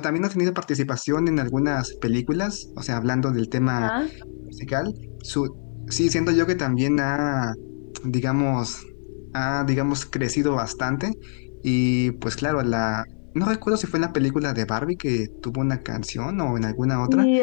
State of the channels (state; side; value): silent; right; digital silence